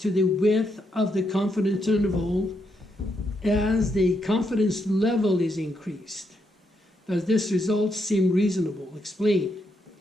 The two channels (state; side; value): normal; both; correlation 0.79